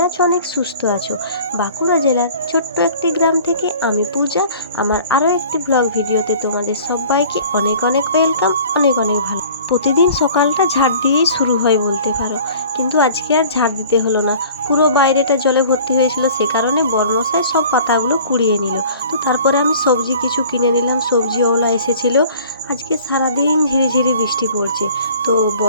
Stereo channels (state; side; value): inverted; both; correlation -0.47